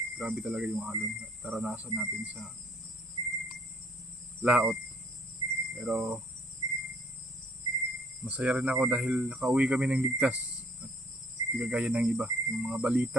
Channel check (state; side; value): normal; both; correlation 0.60